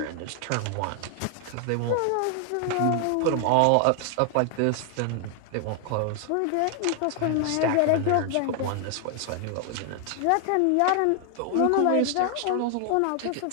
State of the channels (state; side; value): different; both; correlation 0.00